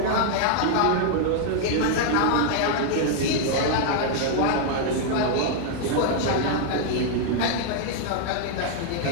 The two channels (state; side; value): different; both; correlation 0.00